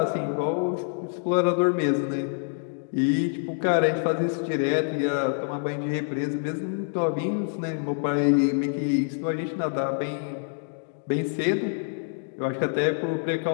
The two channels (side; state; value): right; silent; digital silence